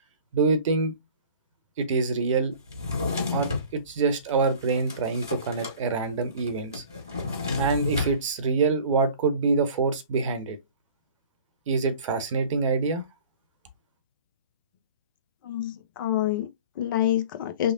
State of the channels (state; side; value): inverted; both; correlation -0.44